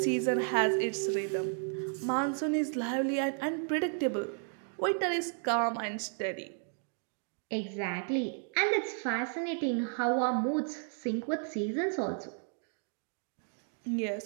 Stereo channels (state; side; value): silent; left; 56 dB below the other